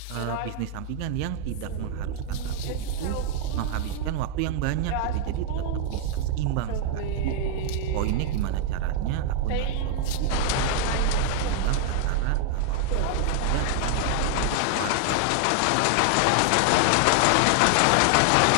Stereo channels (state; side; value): different; both; correlation 0.00